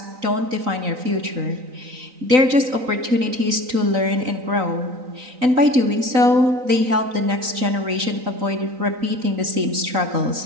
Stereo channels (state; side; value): late; left; 3.9 ms